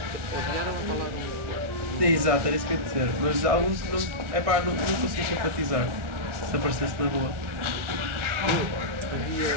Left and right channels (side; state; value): left; late; 1.4 ms